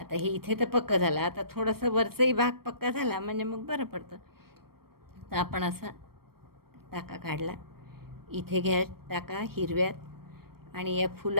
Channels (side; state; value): left; late; 0.94 ms